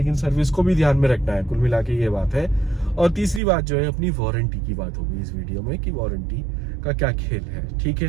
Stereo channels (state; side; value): drops out; left; at 3.4 s